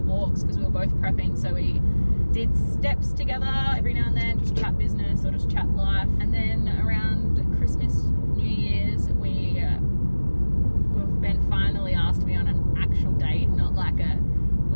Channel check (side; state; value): both; inverted; correlation -1.00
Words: because we were both prepping, so we did steps together every now and then, just chat business or just chat life. And then around Christmas, New Year's, Ben finally asked me on an actual date, not like a